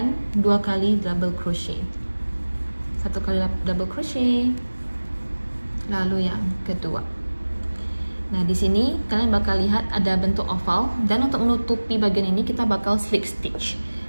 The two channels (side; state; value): both; inverted; correlation -1.00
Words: 2 kali double crochet. 1 kali double crochet, lalu yang kedua. Nah, di sini kalian bakal lihat ada bentuk oval, dan untuk menutupi bagian ini kita bakal slip stitch.